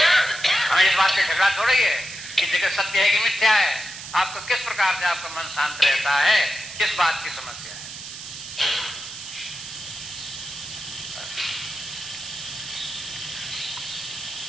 हमें इस बात से झगड़ा थोड़ा ही है कि जगत सत्य है कि मिथ्या है। आपको किस प्रकार से आपका मन शांत रहता है, किस बात की समस्या है?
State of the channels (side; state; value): right; noise; hiss, 11 dB below the sound